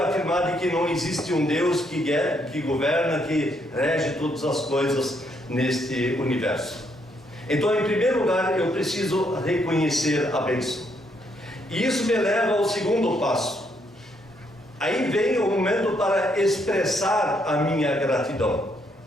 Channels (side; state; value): both; normal; correlation 0.73